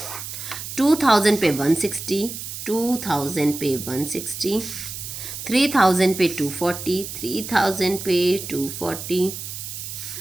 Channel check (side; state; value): right; noise; hiss, 8 dB below the sound